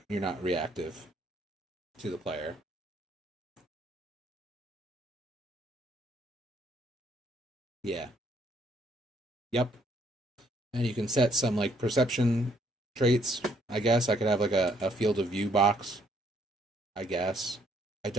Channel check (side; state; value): both; normal; correlation 0.68